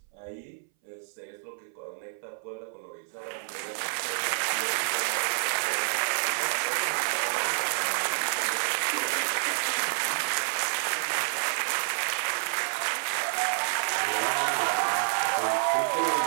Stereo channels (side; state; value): left; silent; 59 dB below the other